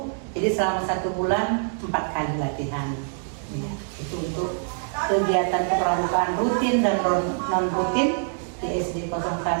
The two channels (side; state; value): left; silent; 62 dB below the other